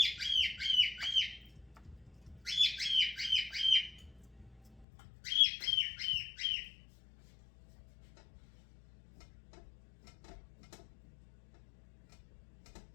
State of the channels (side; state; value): right; drops out; at 4.9 s